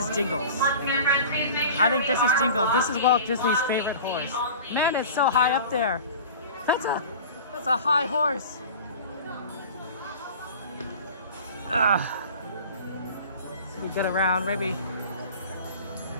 Jingles. I think this is Jingles. This is Walt Disney's favorite horse. Man, it's so high up there. That's a high horse. So we get around, maybe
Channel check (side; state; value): both; inverted; correlation -0.39